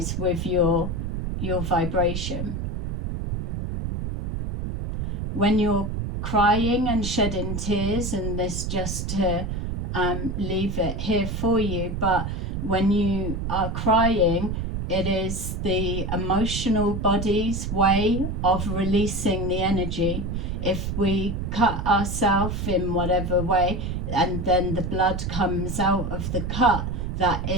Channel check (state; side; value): noise; right; rumble, 3 dB below the sound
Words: with your vibration. When you're crying and shedding tears, and this just to leave it here for you, but when you are crying, it is the emotional body's way of releasing the energy. If we cut ourselves in whatever way, and then the blood comes out of the cut, that